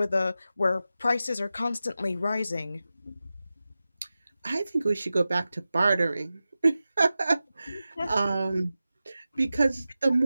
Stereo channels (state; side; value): inverted; both; correlation -0.94